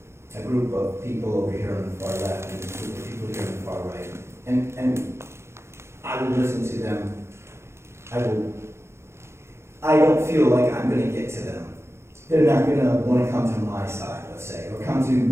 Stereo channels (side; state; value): left; late; 0.13 ms